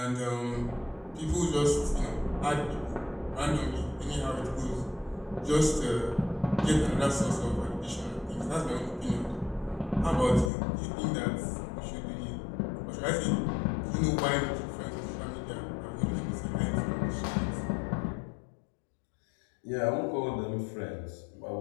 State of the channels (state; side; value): drops out; right; at 10.5 s